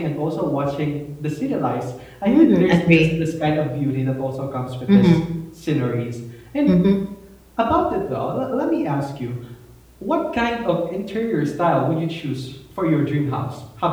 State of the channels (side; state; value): both; identical; correlation 1.00